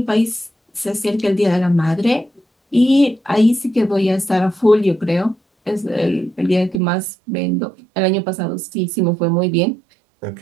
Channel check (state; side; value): drops out; left; at 6.8 s